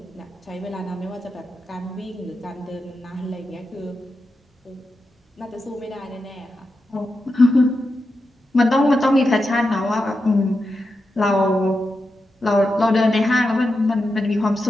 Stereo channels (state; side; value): normal; both; correlation 0.88